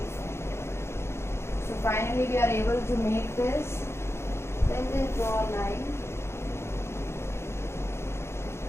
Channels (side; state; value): right; late; 0.13 ms